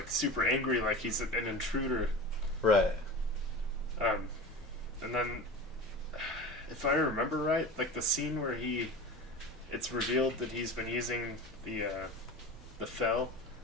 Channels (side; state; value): both; normal; correlation 0.33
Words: super angry, like he's an intruder. Right. And then, if I remember right, like the scene where it's revealed that he's been using the Fel,